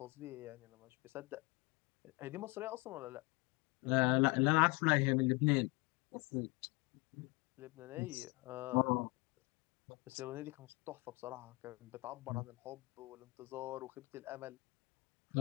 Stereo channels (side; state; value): right; quieter; 26.1 dB